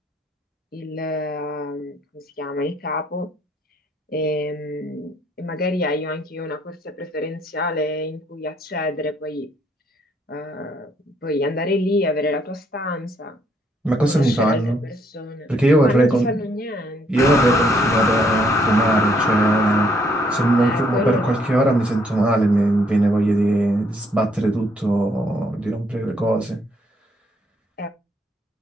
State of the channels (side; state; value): both; normal; correlation 0.69